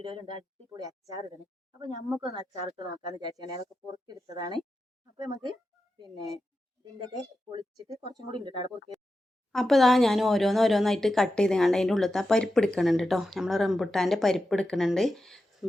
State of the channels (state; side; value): normal; both; correlation 0.90